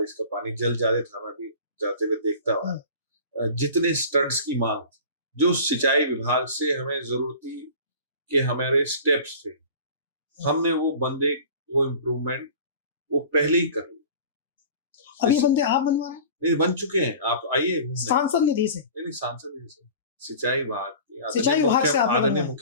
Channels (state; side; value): inverted; both; correlation -0.40